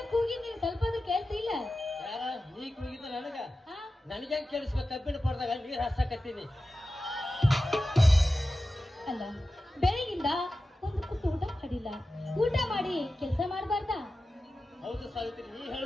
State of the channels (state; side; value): normal; both; correlation 0.94